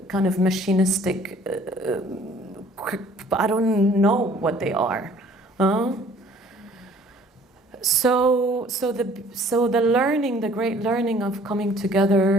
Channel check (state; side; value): normal; both; correlation 0.55